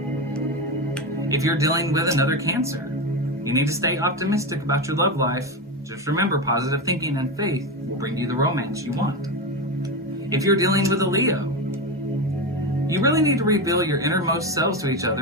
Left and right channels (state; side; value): normal; both; correlation 0.16